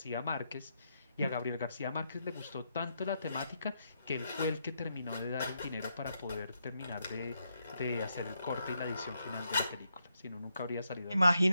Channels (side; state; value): both; inverted; correlation -0.81